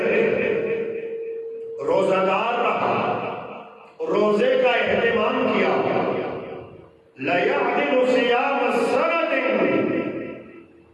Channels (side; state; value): both; identical; correlation 1.00